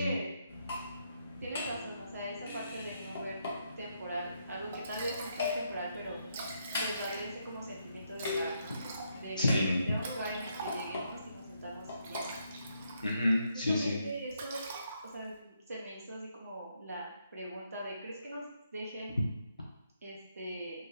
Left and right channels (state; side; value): inverted; both; correlation -0.78